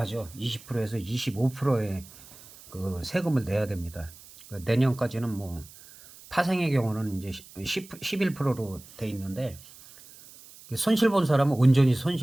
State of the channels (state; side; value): noise; right; hiss, 21 dB below the sound